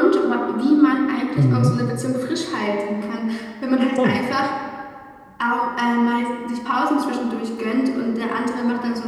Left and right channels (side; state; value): both; identical; correlation 1.00